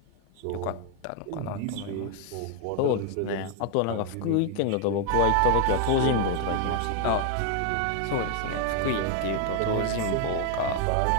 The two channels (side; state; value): both; different; correlation 0.00